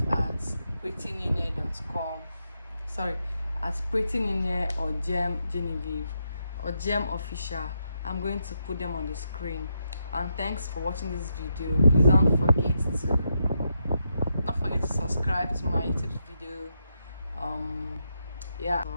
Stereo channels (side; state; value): both; inverted; correlation -0.82